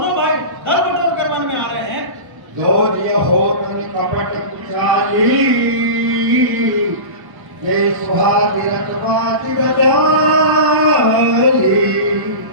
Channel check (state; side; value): late; left; 1.1 ms